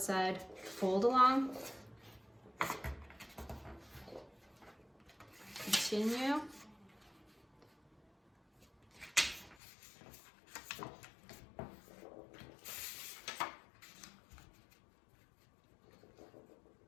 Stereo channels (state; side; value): drops out; right; at 9.6 s